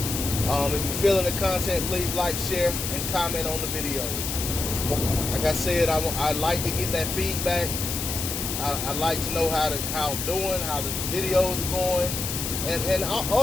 If you're feeling the content, please like, share, and comment on the videos. Like I said, I like to get that feedback. I like to know how I'm doing, how the videos are going, and I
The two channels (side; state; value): left; noise; hiss, 3 dB below the sound